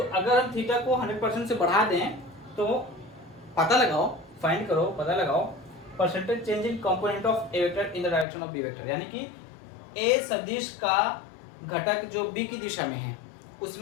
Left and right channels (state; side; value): drops out; right; at 8.2 s